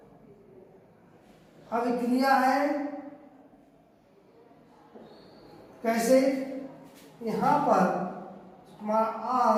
अभिक्रिया है। कैसे, यहाँ पर हमारा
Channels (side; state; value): both; identical; correlation 1.00